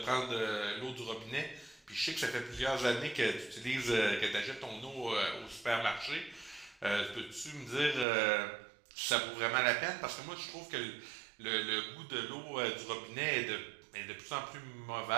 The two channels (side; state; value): left; drops out; at 8.1 s